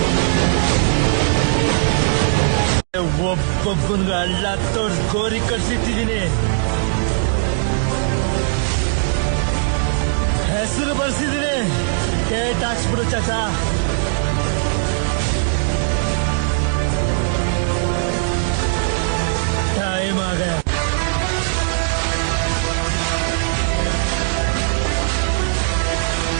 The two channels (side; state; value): left; silent; digital silence